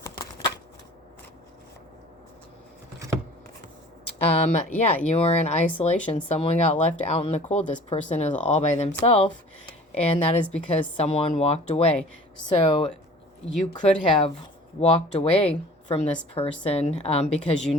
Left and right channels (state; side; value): normal; both; correlation 0.46